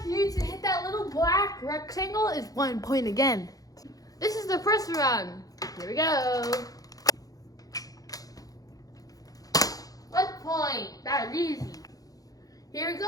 here to hit that little black rectangle is 1 point again. This is the first round. Here we go. 1 point. That is easy. Here we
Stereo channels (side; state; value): right; late; 0.17 ms